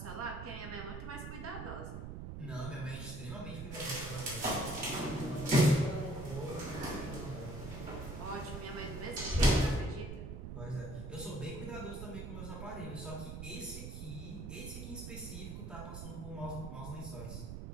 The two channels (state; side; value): noise; right; rumble, 7 dB below the sound